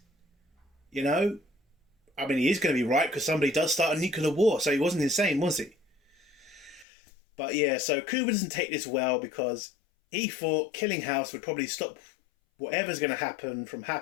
You know? I mean, he is going to be right because somebody does start a nuclear war, so he wasn't insane, was he? But yeah, so Cooper doesn't take this well because he thought killing House would probably stop whatever's going to happen from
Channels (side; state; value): right; drops out; at 6.9 s